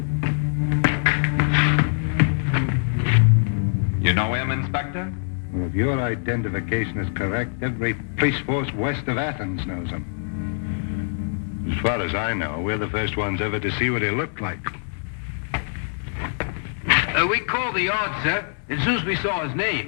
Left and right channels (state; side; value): silent; right; 63 dB below the other